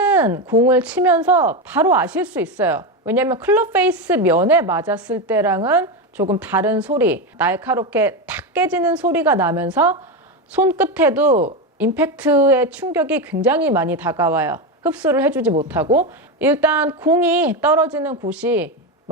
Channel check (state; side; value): normal; both; correlation 0.14